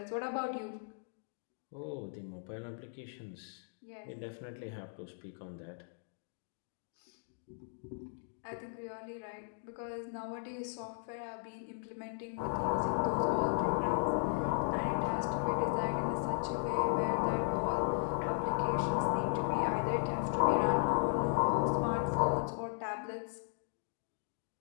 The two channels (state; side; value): silent; right; digital silence